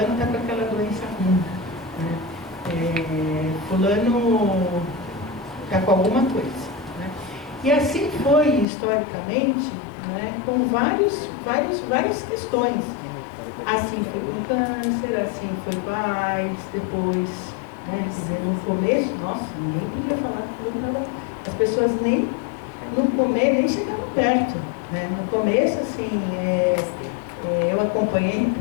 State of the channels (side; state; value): right; drops out; at 8.7 s